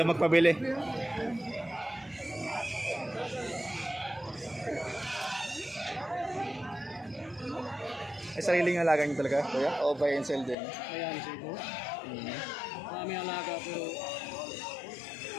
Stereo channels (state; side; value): drops out; right; at 10.6 s